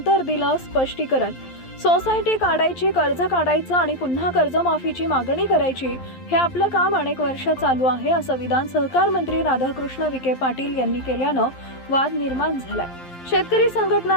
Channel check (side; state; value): right; late; 11 ms